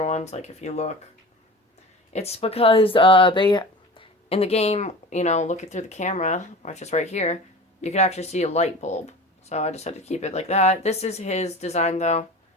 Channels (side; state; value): both; normal; correlation 0.36